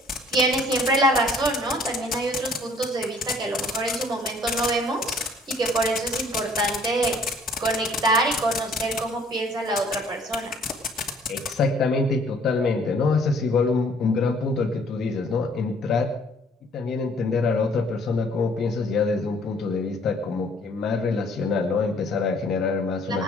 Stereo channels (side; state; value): both; normal; correlation 0.58